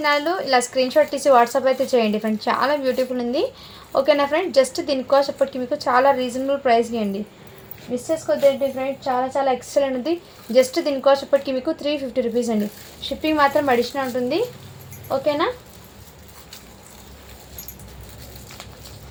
వాళ్ళు ఇలా స్క్రీన్ షాట్ తీసి వాట్సాప్ అయితే చేయండి ఫ్రెండ్స్. చాలా బ్యూటిఫుల్ ఉంది. ఓకేనా ఫ్రెండ్, జస్ట్ దీని కాస్ట్ ఇప్పటికి మీకు చాలా రీజనబుల్ ప్రైస్కి అండి. మిస్ చేసుకోవద్దండి ఫ్రెండ్స్, చాలా చాలా ఎక్సలెంట్ ఉంది. జస్ట్ దీని కాస్ట్ ఇప్పటికి మీకు 350 రూపీస్ అండి. షిప్పింగ్ మాత్రం అడిషనల్ ఉంటుంది. ఓకేనా,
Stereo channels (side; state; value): both; identical; correlation 1.00